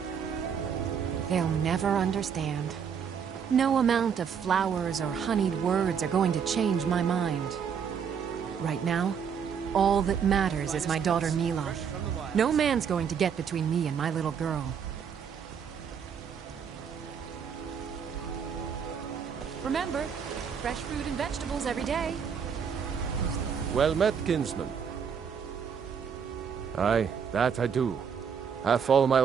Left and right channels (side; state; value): left; quieter; 7.1 dB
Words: They'll never understand. No amount of flowers or honeyed words are going to change my mind. Right now, all that matters is my daughter Mila. No man's going to get between me and my little girl. Remember, fresh fruit and vegetables every day. Well met, kinsman. Aye, that I do. Half all my